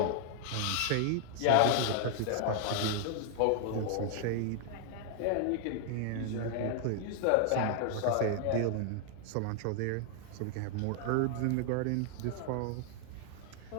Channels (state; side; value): different; both; correlation 0.00